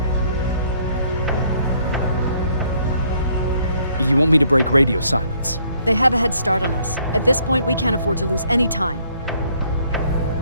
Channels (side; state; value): both; inverted; correlation -0.65